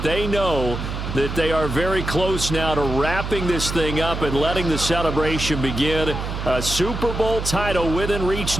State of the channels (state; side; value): noise; right; hum, 5 dB below the sound